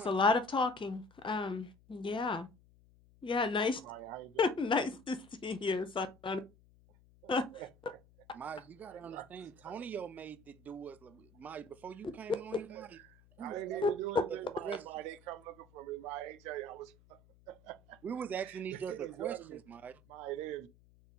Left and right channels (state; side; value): noise; left; hum, 27 dB below the sound